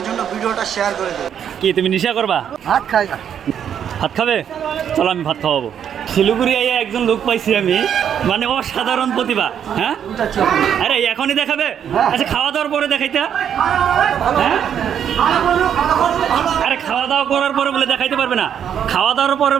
জন্য ভিডিওটা শেয়ার করে দেবে। কি তুমি নেশা করবা? ভাত খাই। ভাত খাবে? চলো আমি ভাত খাওয়াবো। শিলিগুড়ি একজন লোক পাইছি আমি, মানে অসাধারণ প্রতিভা। হ্যাঁ, আরে এখনই দেখাবে? আচ্ছা খাওয়া দাওয়ার পরে দেখাইতে? হ্যাঁ, আরে খাওয়া দাওয়া করার পরে বলে দেখাইতে পারবে না? খাওয়া দাওয়ার পরে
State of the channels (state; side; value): quieter; left; 8.8 dB